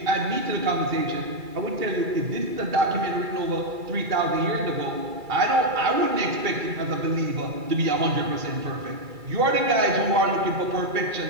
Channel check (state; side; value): late; left; 2.3 ms